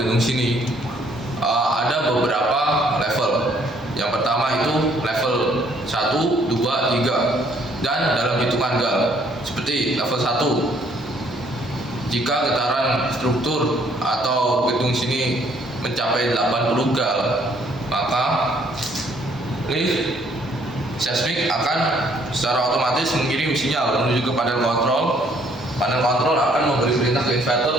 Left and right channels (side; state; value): both; normal; correlation 0.65